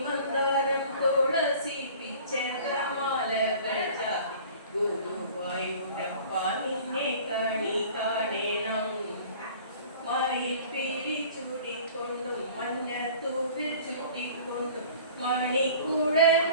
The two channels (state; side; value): inverted; both; correlation -0.46